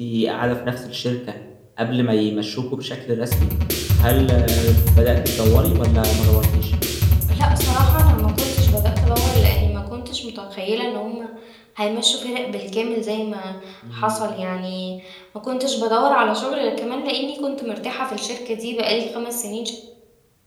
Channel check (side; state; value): both; identical; correlation 1.00